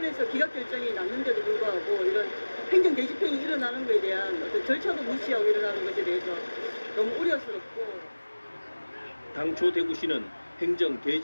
기각 결정이 났는데도 불구하고 이런 행정 대집행이 일어나는 것에 대한 어떤 절차도 무시하고 일어나는 것에 대해서 너무 우려스럽고 당초 대구시는 행정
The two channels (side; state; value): both; inverted; correlation -1.00